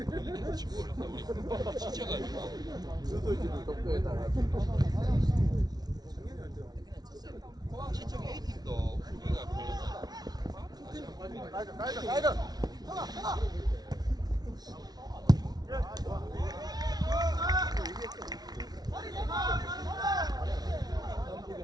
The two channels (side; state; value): left; late; 0.19 ms